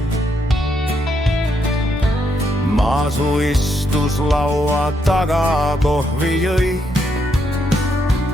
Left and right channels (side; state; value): both; normal; correlation 0.77